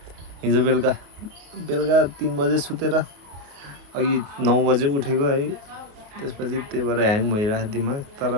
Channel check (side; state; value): left; late; 28 ms